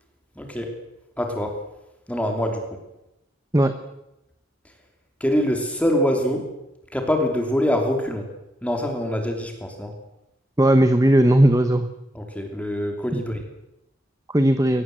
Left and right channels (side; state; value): both; normal; correlation 0.82